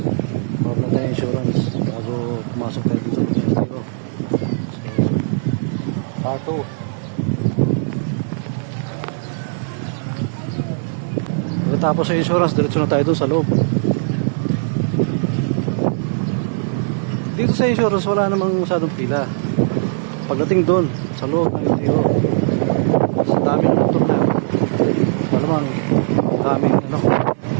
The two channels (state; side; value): silent; left; 55 dB below the other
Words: Pag na tayo insurance bago pumasok tayo sa LTO. So, part 2. Pagkatapos sa insurance, diretso na tayo dun sa loob. Dito sa insurance, wala namang masyadong pila. Pagdating doon, sa loob ng LTO, sa daming motor na yun, wala namang daming